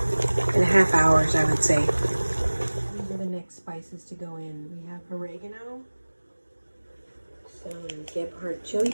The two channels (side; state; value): both; inverted; correlation -1.00